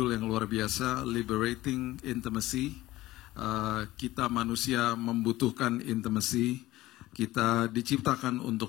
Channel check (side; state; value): right; quieter; 17.0 dB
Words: yang luar biasa, Liberating Intimacy. Kita manusia membutuhkan intimacy. Kita diciptakan